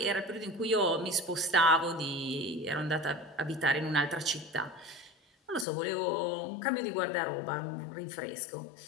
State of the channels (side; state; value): right; drops out; at 5.7 s